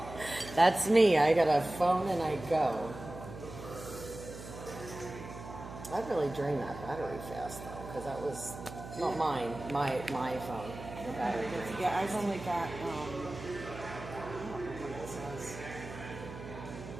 That's me. I got a phone and I go. I really drained that battery fast though, because that was not mine. My phone. The battery. Yeah, I've only got. I don't know what it says.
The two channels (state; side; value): noise; right; hum, 12 dB below the sound